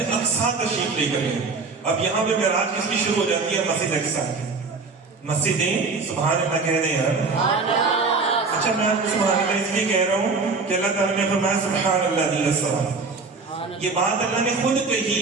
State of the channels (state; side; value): quieter; left; 4.2 dB